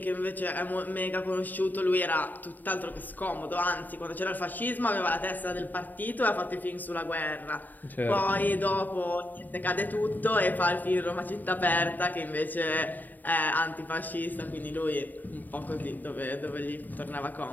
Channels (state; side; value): late; right; 0.086 ms